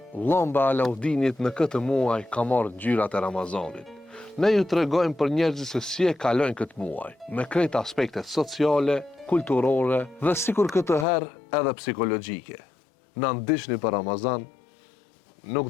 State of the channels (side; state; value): right; drops out; at 11.1 s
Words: lamba Alaudinit në këtë muaj ka marrë ngjyrat e Ramazanit. Ne ju tregojmë për njerëzit se si e kalojnë këtë muaj, me krejt aspektet sociale, kulturore dhe sikur këtë herë edhe psikologjike. Na ndiqni për Ramazan, nuk